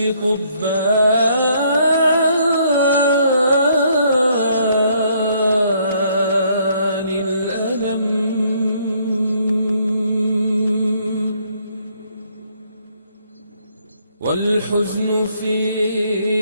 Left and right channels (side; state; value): both; inverted; correlation -0.67